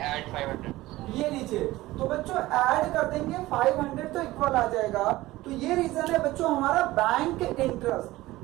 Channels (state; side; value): quieter; left; 17.9 dB